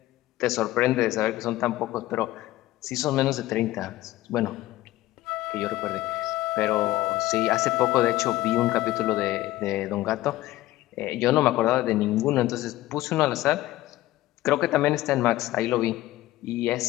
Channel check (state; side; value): quieter; right; 16.5 dB